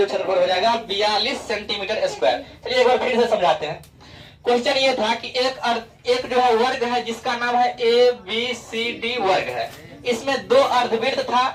क्षेत्रफल हो जाएगा 42 सेंटीमीटर स्क्वायर। चलिए एक बार फिर से समझाते हैं। क्वेश्चन ये था कि एक जो है वर्ग है जिसका नाम है ABCD वर्ग है, इसमें 2 अर्धवृत्त था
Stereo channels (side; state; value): both; identical; correlation 1.00